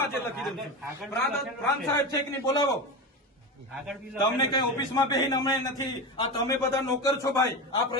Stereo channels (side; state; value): both; normal; correlation 0.22